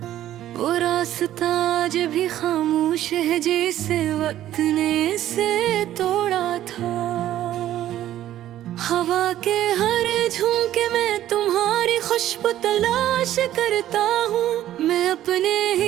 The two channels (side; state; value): left; quieter; 12.8 dB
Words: वो रास्ता आज भी खामोश है जैसे वक्त ने इसे तोड़ा था। हवा के हर झोंके में तुम्हारी खुशबू तलाश करता हूँ। मैं अपने